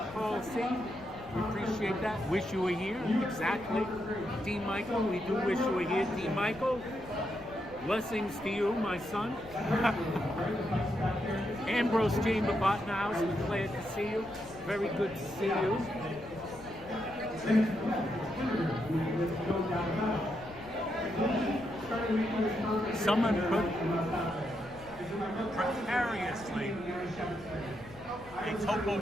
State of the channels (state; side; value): noise; left; rumble, 20 dB below the sound